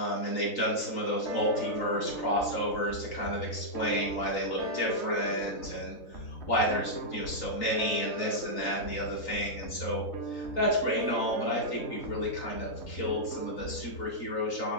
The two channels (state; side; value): late; right; 3.9 ms